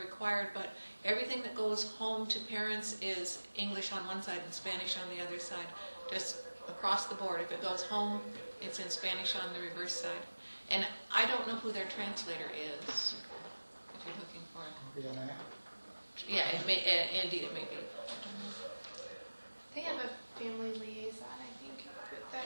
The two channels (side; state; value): both; inverted; correlation -1.00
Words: but everything that goes home to parents is English on one side and Spanish on the other side, just across the board. If it goes home, it's in Spanish on the reverse side. And I don't know who their translator is, if you're looking for it. Yeah, indeed it may be. They have a family liaison, I think, that